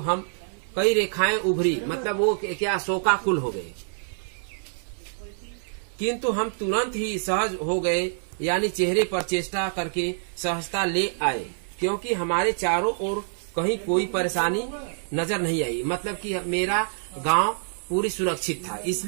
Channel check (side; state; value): left; silent; 60 dB below the other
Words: उभरी, मतलब वो क्या शोकाकुल हो गए। किंतु हम तुरंत ही सहज हो गए, यानी चेहरे पर चेष्टा करके सहजता ले आए, क्योंकि हमारे चारों ओर कहीं कोई परेशानी नजर नहीं आई। मतलब कि मेरा गांव पूरी सुरक्षित था,